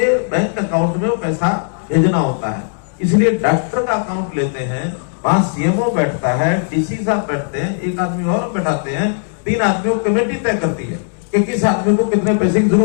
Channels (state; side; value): silent; right; digital silence